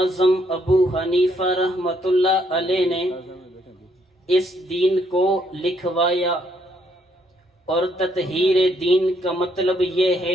ابو حنیفہ رحمۃ اللہ علیہ نے اس دین کو لکھوایا۔ اور تطہیر دین کا مطلب یہ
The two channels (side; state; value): both; normal; correlation 0.71